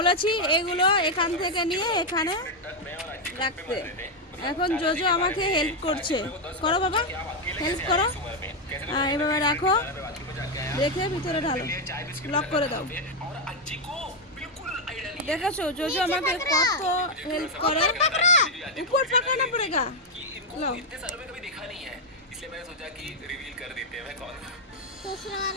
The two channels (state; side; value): normal; both; correlation 0.02